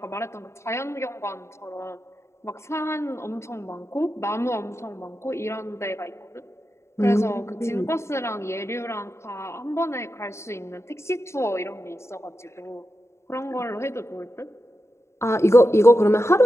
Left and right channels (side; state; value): right; late; 0.13 ms